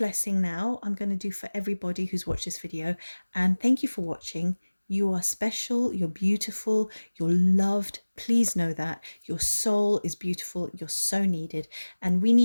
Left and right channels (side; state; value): both; inverted; correlation -1.00